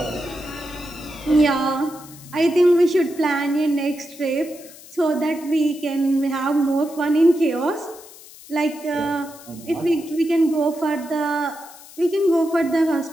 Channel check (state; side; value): noise; left; hiss, 19 dB below the sound